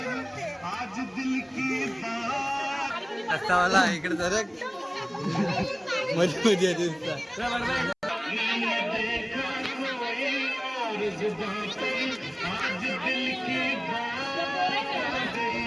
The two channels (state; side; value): identical; both; correlation 1.00